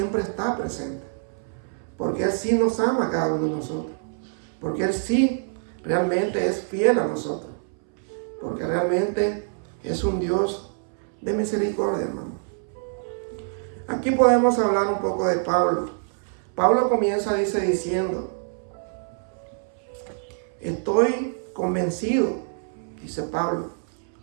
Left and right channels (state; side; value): silent; left; 61 dB below the other